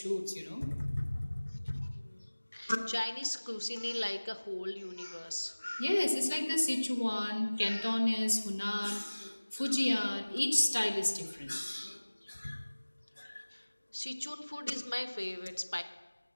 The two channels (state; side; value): inverted; both; correlation -1.00